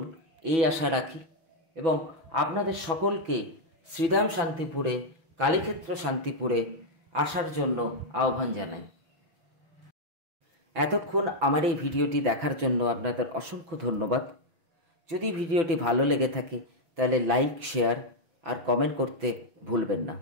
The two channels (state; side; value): late; left; 6.0 ms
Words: এই আশা রাখি এবং আপনাদের সকলকে শ্রীধাম শান্তিপুরে কালীক্ষেত্র শান্তিপুরে আসার জন্য আহ্বান জানাই। এতক্ষণ আমার এই ভিডিওটি দেখার জন্য আপনাদের অসংখ্য ধন্যবাদ। যদি ভিডিওটি ভালো লেগে থাকে তাহলে লাইক, শেয়ার আর কমেন্ট করতে ভুলবেন না।